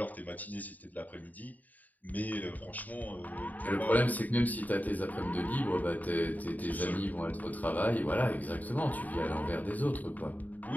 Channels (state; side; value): late; right; 0.079 ms